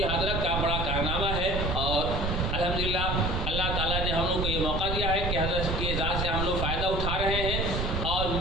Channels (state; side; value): noise; right; rumble, 1 dB below the sound